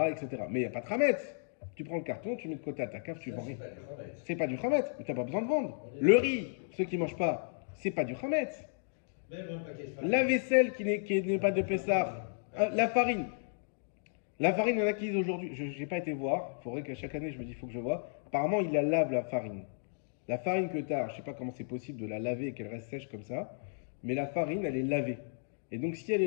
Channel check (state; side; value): silent; right; digital silence